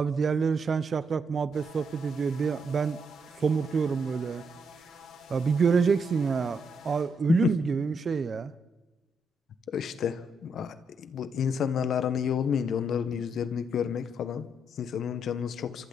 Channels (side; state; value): both; normal; correlation 0.77